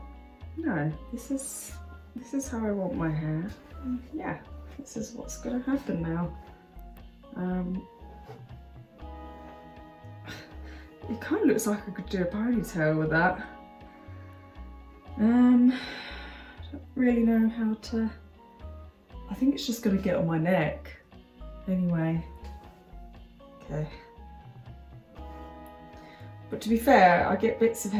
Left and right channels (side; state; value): both; identical; correlation 1.00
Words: no, this is how I want my hair. And yeah, this is what's gonna happen now. It kind of looks like I could do a ponytail with that. Don't really know how to. I think it's just gonna get on my neck. Anyway, okay. But to be fair, I get bits of